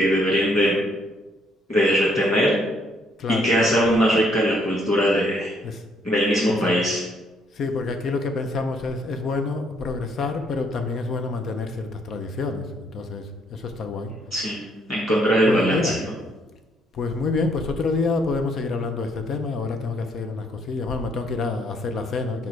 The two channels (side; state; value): both; normal; correlation 0.69